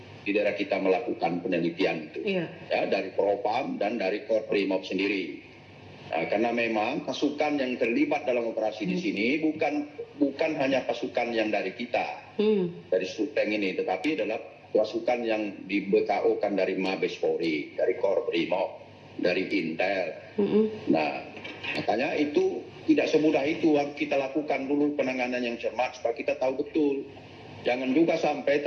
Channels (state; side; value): identical; both; correlation 1.00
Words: daerah kita melakukan penelitian itu, ya, dari Propam dan dari Korprimob sendiri. Nah, karena memang pasukan yang terlibat dalam operasi di sini bukan hanya pasukan yang dari kita, dari Suteng ini, tetapi adalah pasukan yang di BKO-kan dari Mabes Polri, dari Korprimob, dari Intel. Nah, makanya itu tidak semudah itu. Harus kita lakukan dulu penanganan yang cermat supaya kita tahu betul. Jangan juga sampai